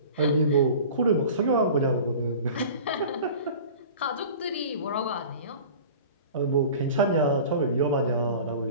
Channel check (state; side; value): inverted; both; correlation -0.40